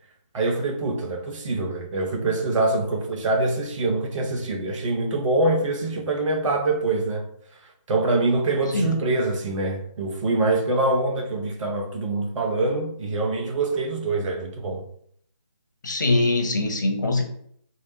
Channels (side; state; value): both; inverted; correlation -0.52